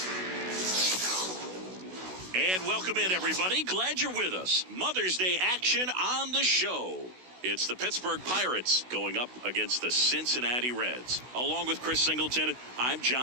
And welcome in, everybody. Glad you're with us. Mother's Day action on the show. It's the Pittsburgh Pirates going up against the Cincinnati Reds. Along with Chris Singleton, I'm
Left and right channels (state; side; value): late; left; 16 ms